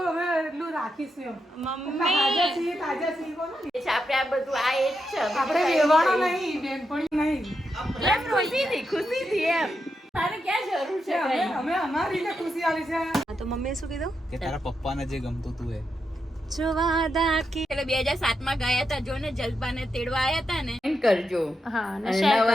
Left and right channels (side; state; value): both; normal; correlation 0.85